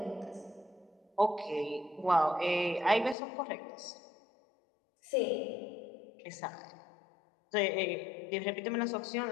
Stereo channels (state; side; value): drops out; right; at 3.2 s